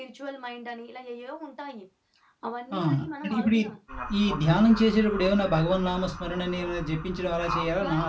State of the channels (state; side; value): identical; both; correlation 1.00